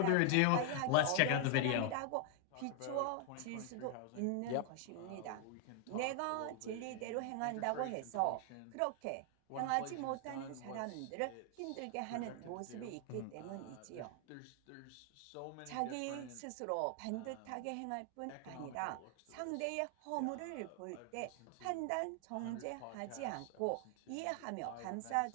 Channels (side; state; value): both; different; correlation 0.00